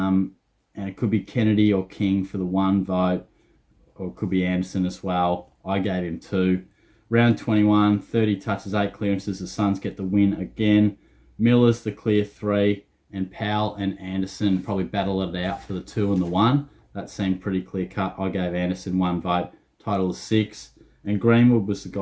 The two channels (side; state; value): both; identical; correlation 1.00